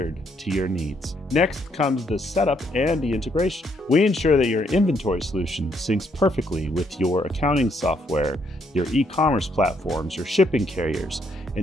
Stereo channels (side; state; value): both; normal; correlation 0.72